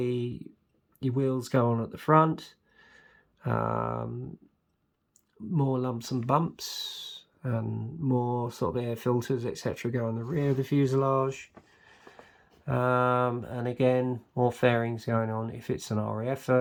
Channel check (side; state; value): both; identical; correlation 1.00